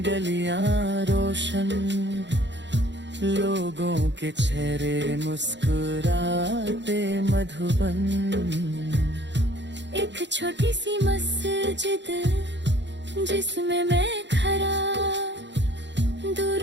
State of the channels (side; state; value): left; late; 0.52 ms